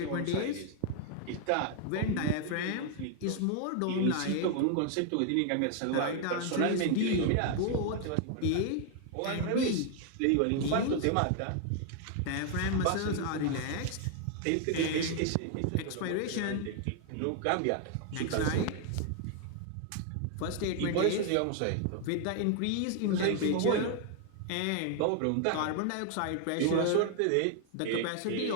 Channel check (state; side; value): different; both; correlation 0.00